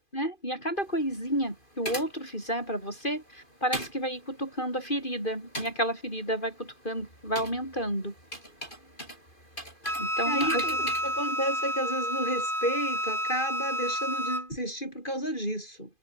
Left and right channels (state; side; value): late; right; 2.5 ms